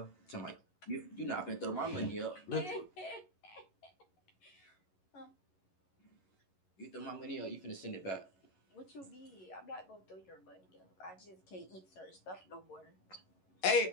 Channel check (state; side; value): late; right; 11 ms